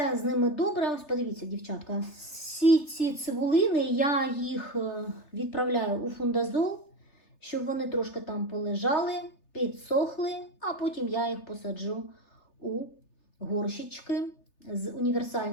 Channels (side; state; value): right; late; 3.3 ms